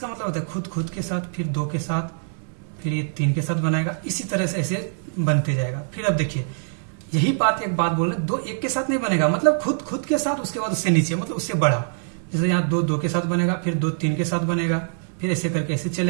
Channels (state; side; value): silent; left; digital silence